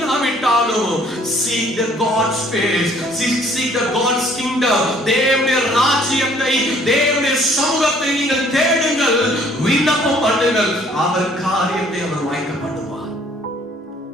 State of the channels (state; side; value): normal; both; correlation 0.59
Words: வேண்டுமானாலும் seek the God's face, seek the God's kingdom, தேவனுடைய ராஜ்யத்தை, தேவனுடைய சமூகத்தை நீங்கள் தேடுங்கள், விண்ணப்பம் பண்ணுங்கள், அவர் காரியத்தை அவர் வாய்க்க பண்ணுவார்.